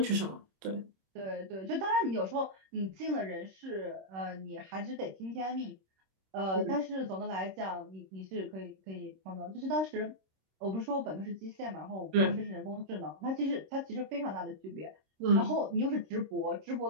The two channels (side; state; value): left; late; 26 ms